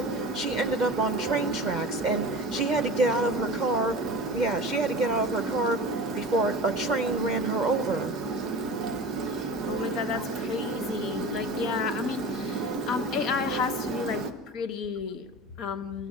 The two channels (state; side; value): normal; both; correlation 0.34